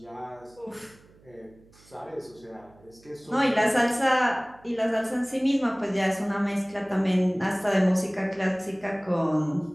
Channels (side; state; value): right; noise; hum, 27 dB below the sound